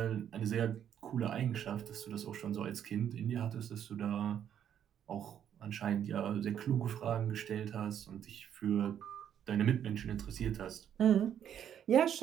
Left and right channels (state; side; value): quieter; left; 9.5 dB